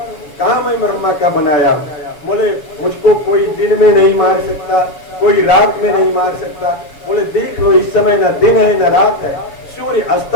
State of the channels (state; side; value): late; right; 7.1 ms